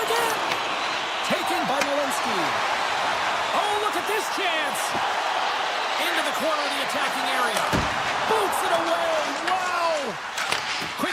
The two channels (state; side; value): identical; both; correlation 1.00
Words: Taken by Malinsky. Oh, look at this chance. Into the corner of the attacking area. Boots it away. Wow. Quick